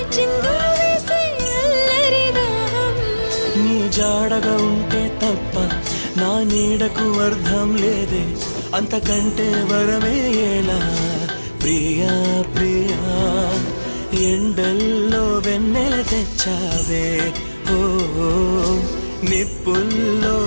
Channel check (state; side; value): inverted; both; correlation -1.00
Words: చిందులు వేసే అల్లరి దాహం. నీ జాడగా ఉంటే తప్ప నా నీడకు అర్థం లేదే, అంతకంటే వరమే ఎలా ప్రియా ప్రియా. ఎండల్లో వెన్నెల తెచ్చావే, ఓ నిప్పుల్లో